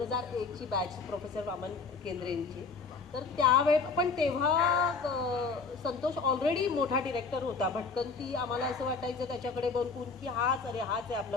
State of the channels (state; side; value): quieter; right; 4.6 dB